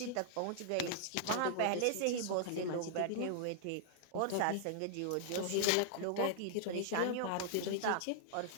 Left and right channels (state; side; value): different; both; correlation -0.01